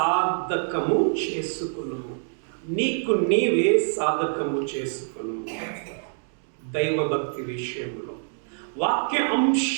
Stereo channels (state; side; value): silent; left; digital silence